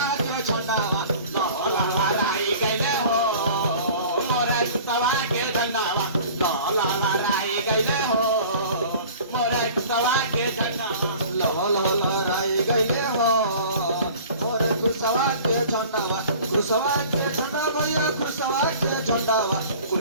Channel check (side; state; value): both; inverted; correlation -0.45